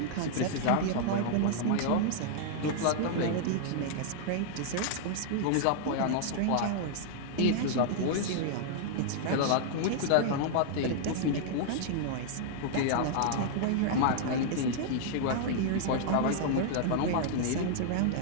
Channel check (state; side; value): different; both; correlation -0.01